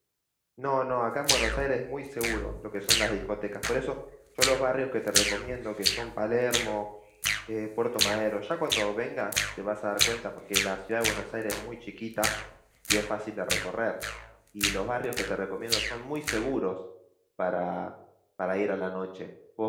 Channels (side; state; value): both; identical; correlation 1.00